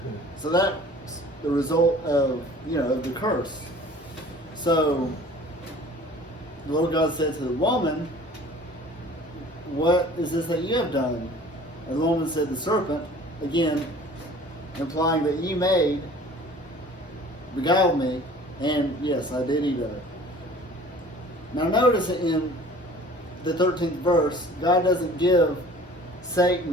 So that's the result of of the curse. So the Lord God said to the woman, "What is this that you have done?" And the woman said, "The serpent," again implying that you beguiled me, and yes, I did eat of it. Now notice in the 13th verse, God doesn't give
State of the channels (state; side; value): normal; both; correlation 0.47